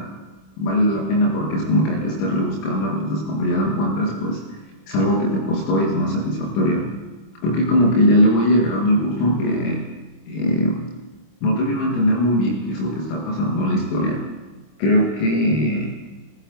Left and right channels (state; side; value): late; right; 26 ms